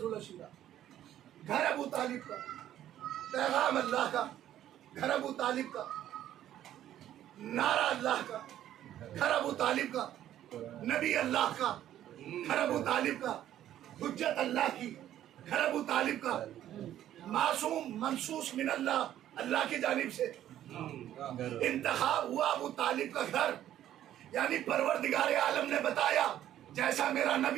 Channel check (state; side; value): quieter; left; 11.9 dB